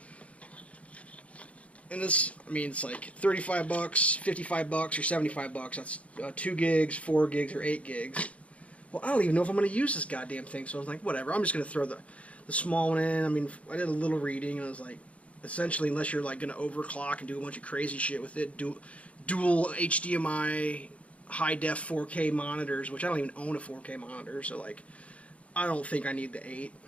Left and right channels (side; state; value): right; late; 0.064 ms